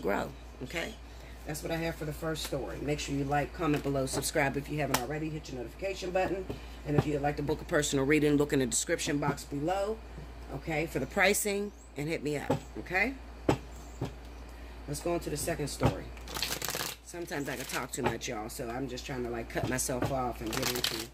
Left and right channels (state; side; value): identical; both; correlation 1.00